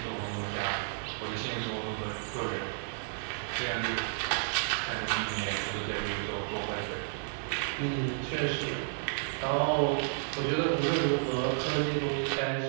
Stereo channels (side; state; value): left; silent; digital silence